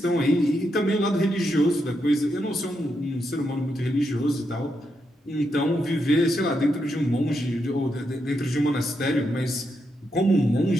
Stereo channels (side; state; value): both; normal; correlation 0.82